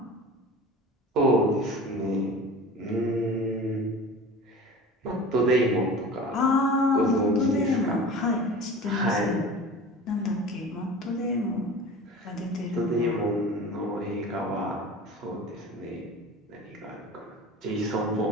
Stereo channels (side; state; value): both; normal; correlation 0.37